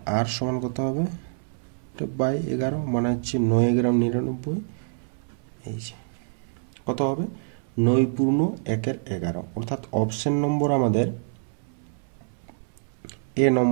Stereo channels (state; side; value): silent; left; 60 dB below the other